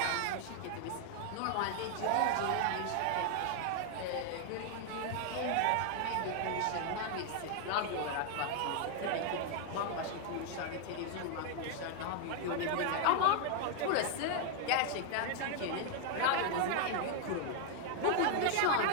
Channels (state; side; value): different; both; correlation 0.00